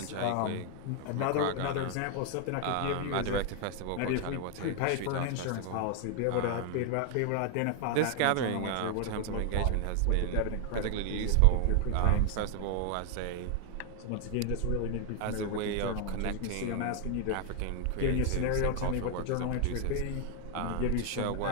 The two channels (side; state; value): both; different; correlation 0.01